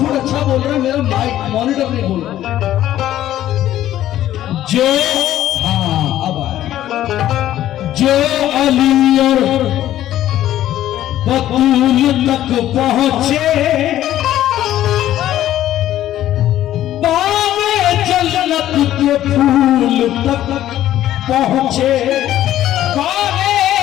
अच्छा बोल रहा है, मेरा माइक मॉनिटर नहीं बोल रहा। जो हाँ अब आया, जो अली और बतूल तक पहुंचे जन्नत के फूल तक पहुंचे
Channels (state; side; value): quieter; right; 12.9 dB